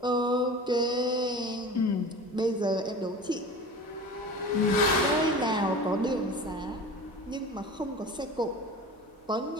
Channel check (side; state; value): both; normal; correlation 0.36